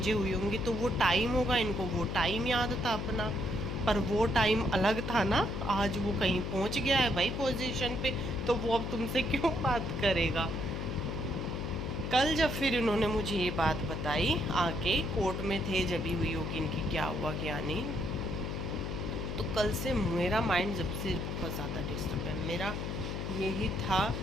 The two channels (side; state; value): left; noise; hum, 4 dB below the sound